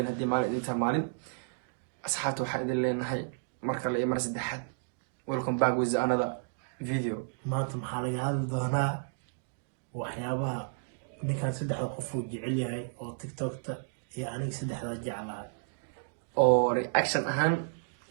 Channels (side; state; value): left; silent; digital silence